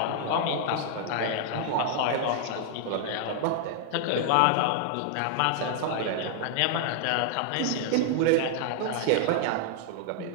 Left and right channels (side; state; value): both; different; correlation 0.00